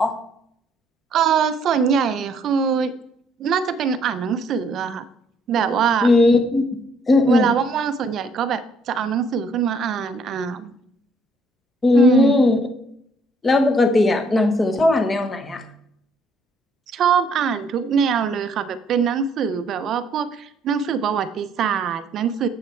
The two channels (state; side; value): normal; both; correlation 0.65